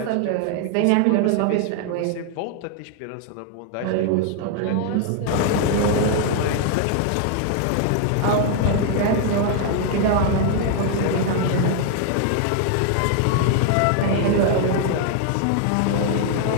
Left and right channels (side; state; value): both; different; correlation 0.00